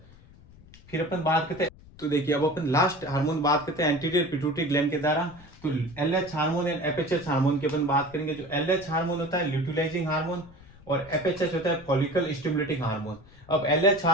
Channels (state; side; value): noise; left; rumble, 22 dB below the sound